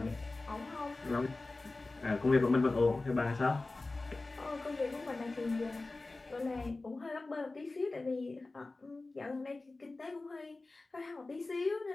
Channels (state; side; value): quieter; right; 3.3 dB